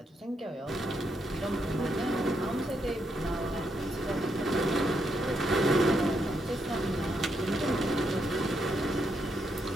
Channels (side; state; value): both; normal; correlation 0.79